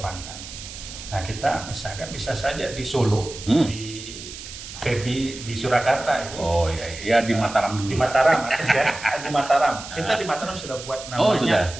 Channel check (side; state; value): right; noise; hiss, 12 dB below the sound